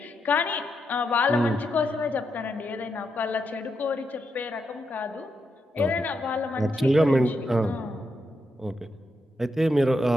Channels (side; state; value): both; normal; correlation 0.83